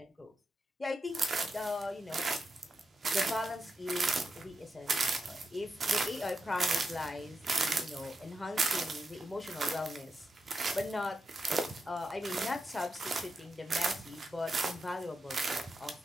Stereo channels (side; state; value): both; normal; correlation 0.86